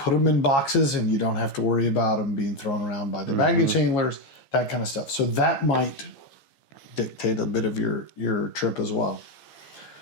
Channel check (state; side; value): late; right; 15 ms